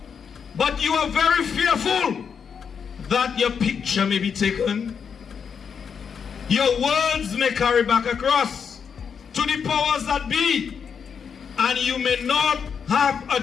But you are very fearful that your picture may be taken. Your words may carry back across to the powers that be, and you may not have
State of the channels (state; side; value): quieter; right; 6.7 dB